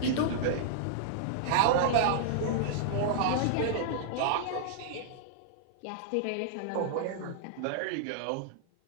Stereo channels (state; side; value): different; both; correlation -0.01